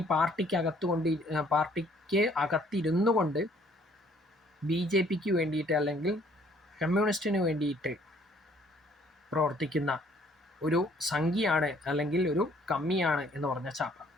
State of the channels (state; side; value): normal; both; correlation 0.61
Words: പാർട്ടിക്ക് അകത്തിരുന്നു കൊണ്ട് BJPക്ക് വേണ്ടിയിട്ട് അല്ലെങ്കിൽ കമ്മ്യൂണിസ്റ്റിന് വേണ്ടിയിട്ട് പ്രവർത്തിക്കുന്ന ഒരു സംഖ്യയാണ് അല്ലെങ്കിൽ ഒരു കമ്മിയാണ് എന്ന് പറഞ്ഞ ചാപ്പ.